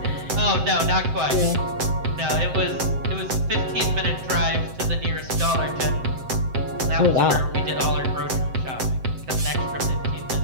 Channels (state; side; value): late; left; 7.7 ms